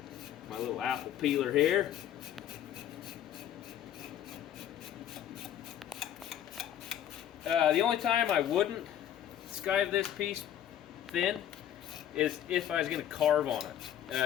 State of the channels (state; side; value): quieter; right; 10.7 dB